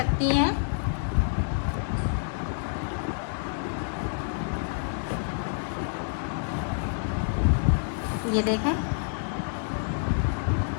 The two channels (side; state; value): right; silent; digital silence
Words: हैं। ये देखें,